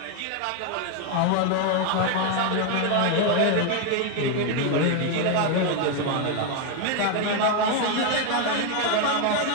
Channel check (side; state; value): both; different; correlation 0.01